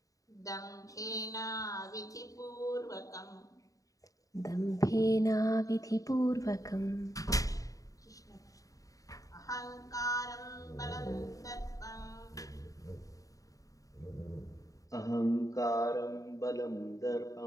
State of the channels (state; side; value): late; right; 0.16 ms